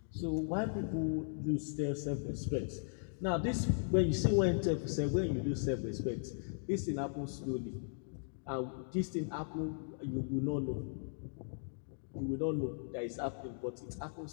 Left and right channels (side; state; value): right; silent; digital silence